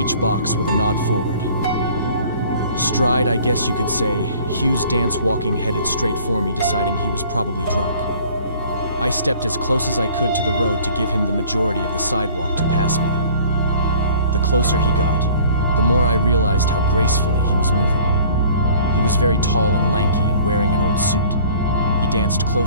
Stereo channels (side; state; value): both; inverted; correlation -0.51